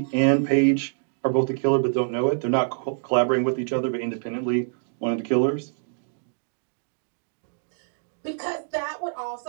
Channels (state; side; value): silent; left; digital silence